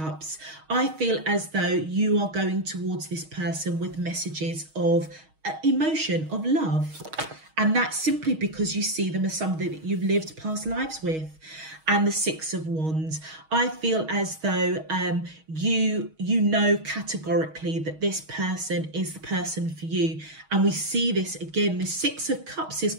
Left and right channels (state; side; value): late; left; 6.3 ms